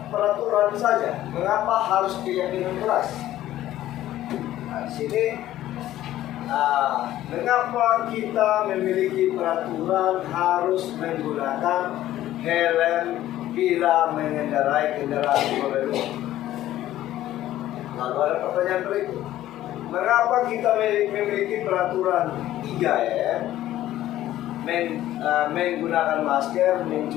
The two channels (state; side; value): quieter; right; 13.8 dB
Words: peraturan saja? Mengapa harus keyakinan keras? Nah, di sini, mengapa kita memiliki peraturan harus menggunakan helm bila mengendarai kendaraan roda dua? pertanyaan berikut. Mengapa kita memiliki peraturan 3M? Menggunakan masker,